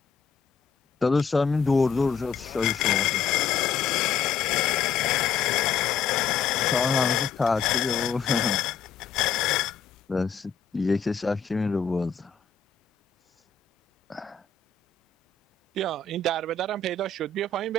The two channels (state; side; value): quieter; right; 5.7 dB